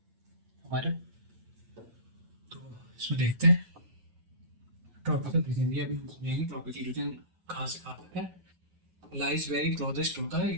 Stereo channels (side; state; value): left; late; 8.9 ms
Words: हमारे। तो इसमें देखते हैं ट्रॉपिकल रीजन, ये अभी हम समझेंगे ट्रॉपिकल रीजन कहाँ से कहाँ तक है। Lies very closest to the